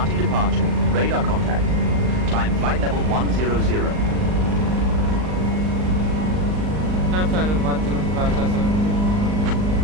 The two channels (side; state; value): left; late; 39 ms